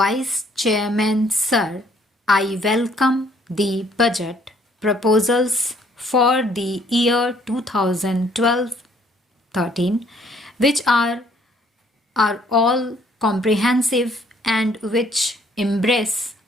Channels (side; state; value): both; normal; correlation 0.63